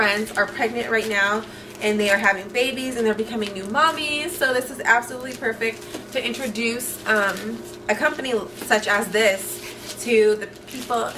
are pregnant right now, and they are having babies and they're becoming new mommies. So this is absolutely perfect to introduce a company such as this to the people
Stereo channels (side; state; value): both; identical; correlation 1.00